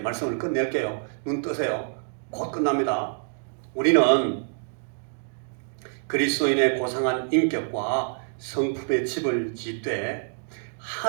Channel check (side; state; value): left; silent; digital silence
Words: 말씀을 끝낼게요. 눈 뜨세요. 곧 끝납니다. 우리는 그리스도인의 고상한 인격과 성품의 집을 짓되